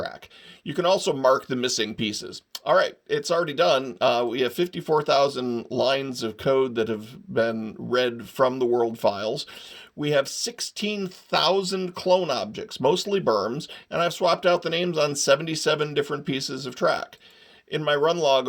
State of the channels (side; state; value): both; identical; correlation 1.00